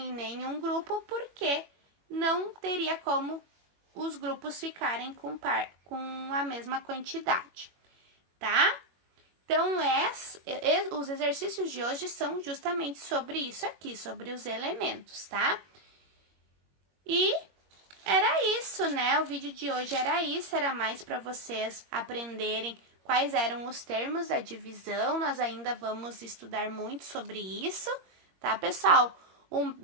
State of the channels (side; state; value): left; late; 21 ms